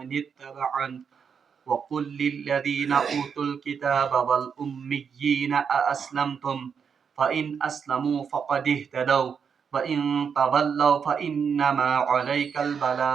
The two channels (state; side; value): quieter; left; 6.6 dB